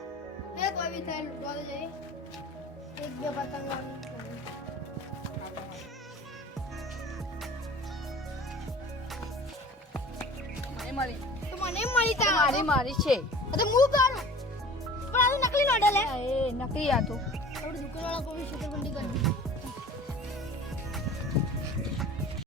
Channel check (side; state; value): both; normal; correlation 0.43